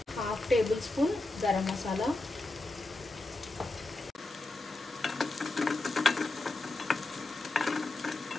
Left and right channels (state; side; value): quieter; right; 3.0 dB